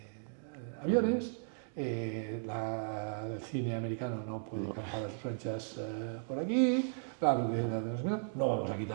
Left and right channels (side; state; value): left; silent; digital silence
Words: aviones, el cine americano no puede campar a sus anchas por aquí, no vamos a